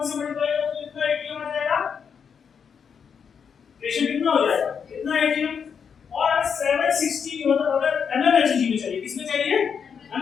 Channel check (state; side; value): quieter; right; 6.8 dB